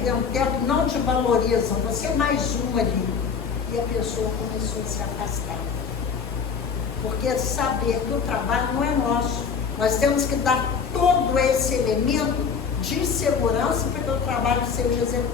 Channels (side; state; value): right; quieter; 6.1 dB